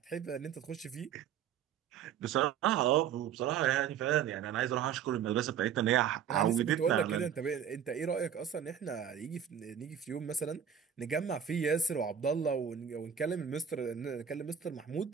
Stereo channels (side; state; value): left; quieter; 8.5 dB